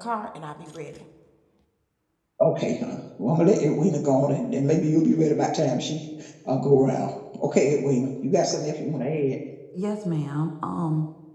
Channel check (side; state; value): both; identical; correlation 1.00